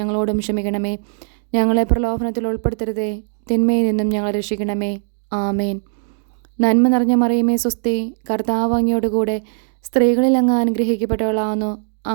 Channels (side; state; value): left; silent; digital silence